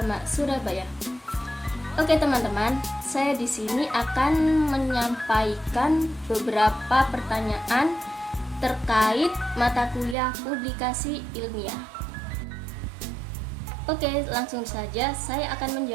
Surabaya. Oke teman-teman, saya di sini akan menyampaikan beberapa pertanyaan terkait mata kuliah publikasi ilmiah. Oke, langsung saja saya akan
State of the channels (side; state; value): left; drops out; at 10.2 s